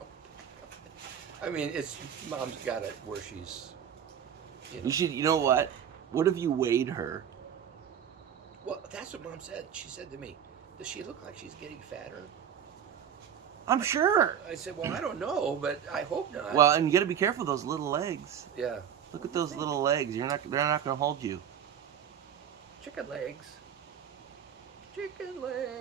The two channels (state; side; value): quieter; left; 8.7 dB